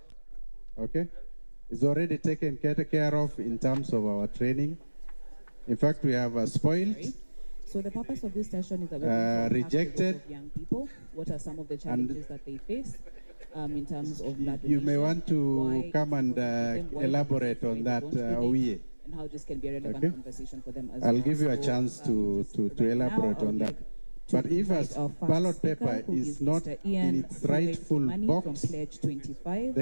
Okay? It's already taken care of in terms of our training. In fact, we have spoiled. So the purpose of this session is that we're rejected of young people. What are some of the challenges that they face? In terms of blood you may want to come and elaborate on that, Owie. And how this can be a relevant conversation for them as I'll well. give you a chance to elaborate on that. But if a ballot paper is not in its rightful box,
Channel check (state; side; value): inverted; both; correlation -1.00